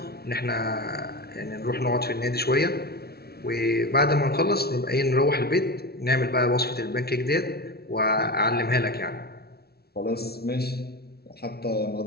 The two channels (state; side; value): late; right; 0.45 ms